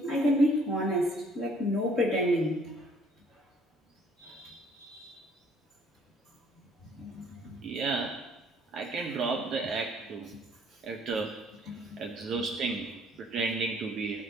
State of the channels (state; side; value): normal; both; correlation 0.61